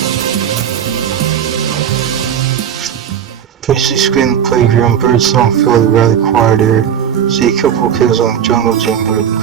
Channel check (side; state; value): left; quieter; 8.7 dB